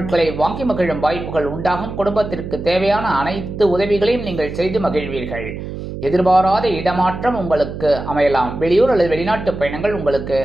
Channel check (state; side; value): noise; right; hum, 8 dB below the sound